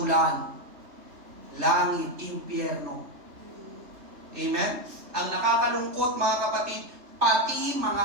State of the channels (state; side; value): late; left; 3.3 ms